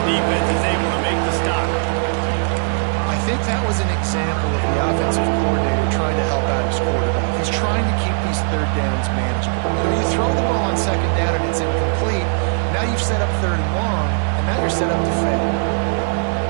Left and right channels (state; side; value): silent; left; 62 dB below the other